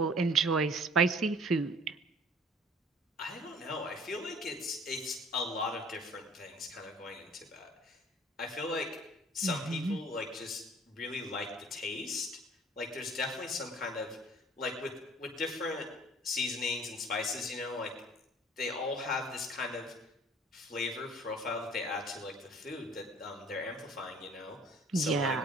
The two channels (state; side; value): normal; both; correlation 0.51